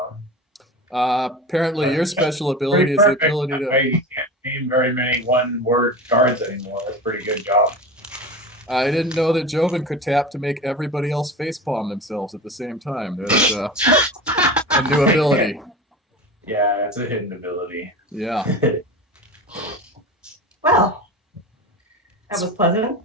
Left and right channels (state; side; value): normal; both; correlation 0.29